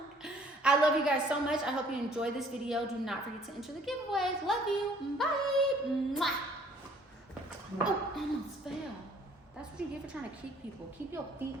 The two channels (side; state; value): both; normal; correlation 0.58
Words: I love you guys so much. I hope you enjoyed this video. Do not forget to enter the giveaways. Love you. Bye. Mwah. Oh, almost fell. That's what you get for trying to kick people. Keep your feet